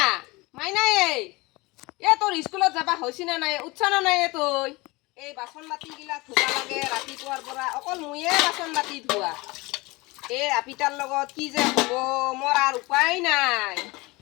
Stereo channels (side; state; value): right; quieter; 23.4 dB